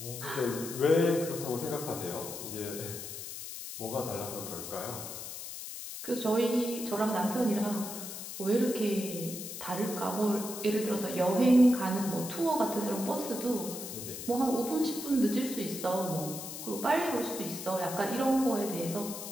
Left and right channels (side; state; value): left; noise; hiss, 9 dB below the sound